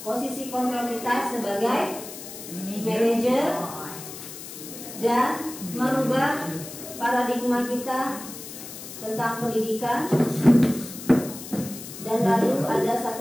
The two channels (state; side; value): noise; left; hiss, 12 dB below the sound